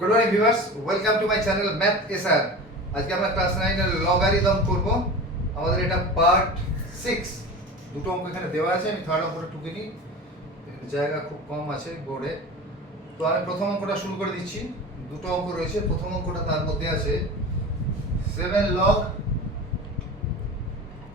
morning viewers, welcome to my channel math SR. আজকে আমরা ক্লাস 9 এর লগারিদম করব। আমাদের এটা পার্ট 6। দুটো অঙ্ক এখানে দেওয়া আছে, আমি থার্ড অঙ্কটা টুকে নিই, জায়গা খুব কম আছে বোর্ডে। তো আমি প্রথম অঙ্কটা শুরু করে দিচ্ছি। দুটো অঙ্ক রয়েছে। প্রথম অঙ্কটা তার মধ্যে আছে 7 log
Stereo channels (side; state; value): both; normal; correlation 0.32